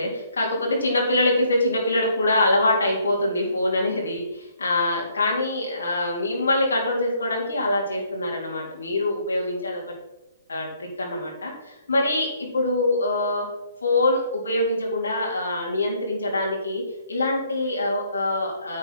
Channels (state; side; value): inverted; both; correlation -0.67